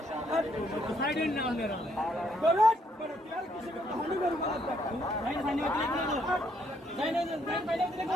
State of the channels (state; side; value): normal; both; correlation 0.71